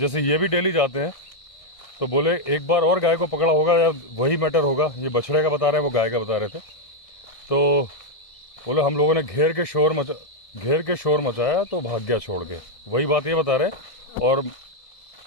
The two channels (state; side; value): late; right; 1.6 ms